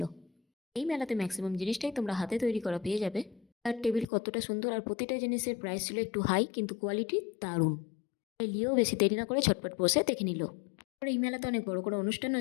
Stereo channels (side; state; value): right; drops out; at 4.0 s